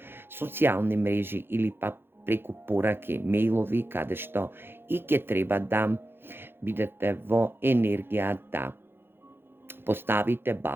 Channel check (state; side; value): late; left; 0.10 ms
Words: социјални мрежи или пак преку пораки, мејлови, каде што и ќе треба да бидете во енергија да поставите